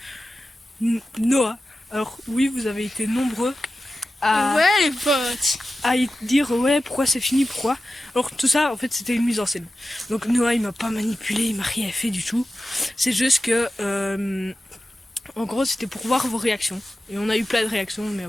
Noah. Alors oui, vous avez été nombreux Ouais les potes, à dire ouais, pourquoi c'est fini, pourquoi. Alors tout ça, en fait, c'était une mise en scène. Donc Noah, il m'a pas manipulé, il m'a rien fait du tout. C'est juste que en gros, c'était pour voir vos réactions. Et on a eu plein de réactions, mais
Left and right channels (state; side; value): normal; both; correlation 0.93